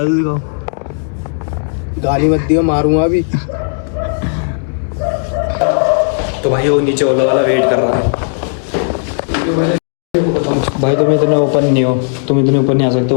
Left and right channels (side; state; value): right; silent; digital silence